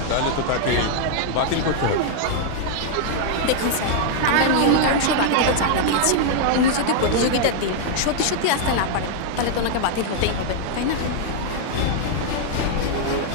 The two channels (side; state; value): both; different; correlation -0.01